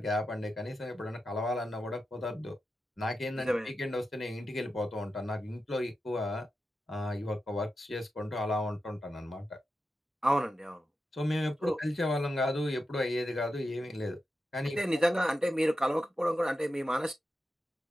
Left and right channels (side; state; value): both; normal; correlation 0.90